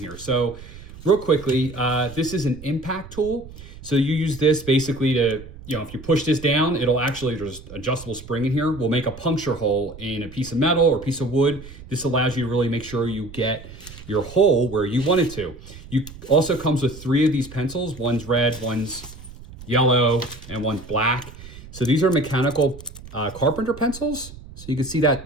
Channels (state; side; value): noise; right; rumble, 16 dB below the sound